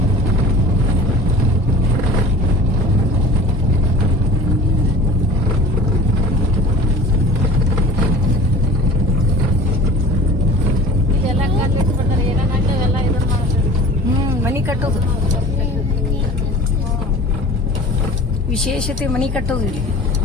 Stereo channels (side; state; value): both; normal; correlation 0.42